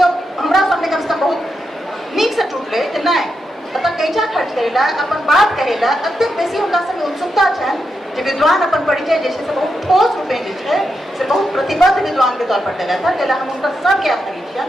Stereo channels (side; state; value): both; normal; correlation 0.85